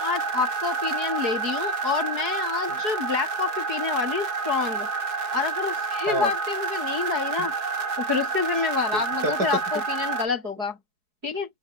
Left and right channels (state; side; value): late; left; 4.7 ms